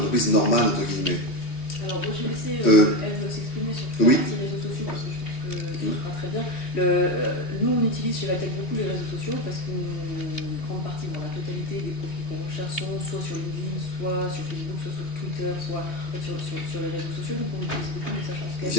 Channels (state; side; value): late; right; 3.1 ms